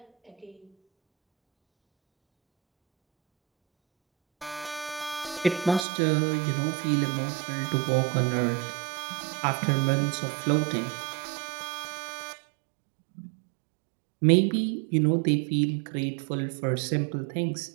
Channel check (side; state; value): left; drops out; at 5.9 s